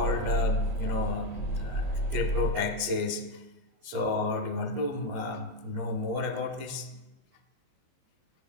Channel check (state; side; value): late; left; 22 ms